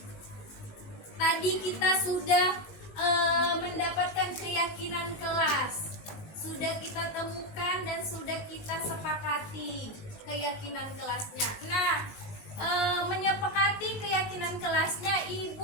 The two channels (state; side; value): late; right; 18 ms